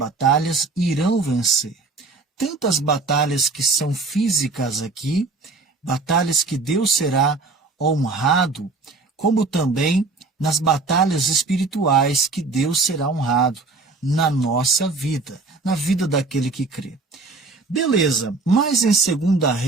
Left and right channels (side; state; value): left; quieter; 3.7 dB